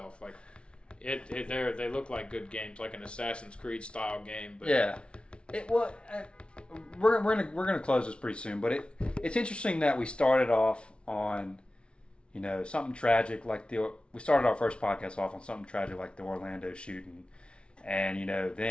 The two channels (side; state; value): right; late; 0.058 ms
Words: Like they look like good games, like an Assassin's Creed style game. But yeah. We're gonna close this pretty soon, but it's interesting that we started off on, something tragic like we started our first podcast off on something tragic like the Orlando shooting. And,